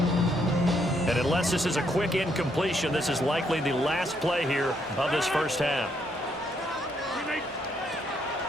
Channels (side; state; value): both; normal; correlation 0.74